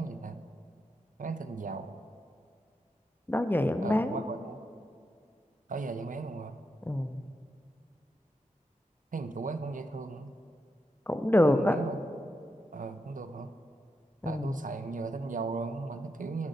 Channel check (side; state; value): both; normal; correlation 0.85